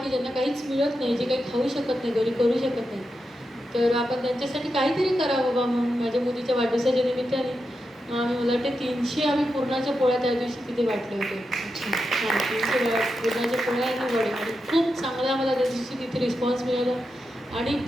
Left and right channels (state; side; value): normal; both; correlation 0.88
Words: की ज्यांना काहीच मिळत नाही, जे काही खाऊ शकत नाही, घरी करू शकत नाही, तर आपण त्यांच्यासाठी काहीतरी करावं बाबा म्हणून माझ्या मुलीच्या वाढदिवसाच्या निमित्ताने आम्ही, मला वाटते 300 आम्ही पुरणाच्या पोळ्या त्या दिवशी तिथे वाटले होते. हां, 300 पुरणाच्या पोळ्या आणि वडे, आणि खूप चांगला मला त्या दिवशी तिथे रिस्पॉन्स मिळाला. आणि